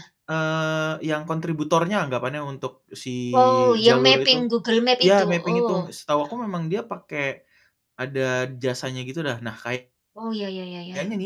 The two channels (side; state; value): both; identical; correlation 1.00